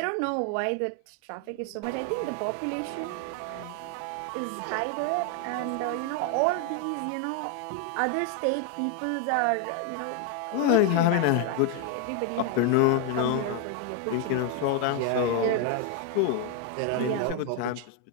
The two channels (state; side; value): different; both; correlation 0.01